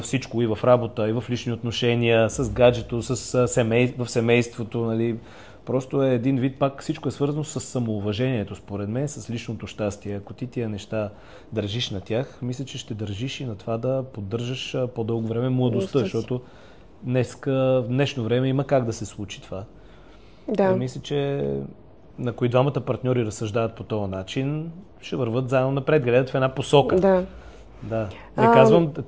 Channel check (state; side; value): identical; both; correlation 1.00